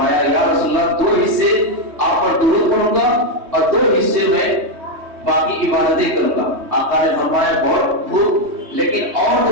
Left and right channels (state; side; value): late; left; 3.2 ms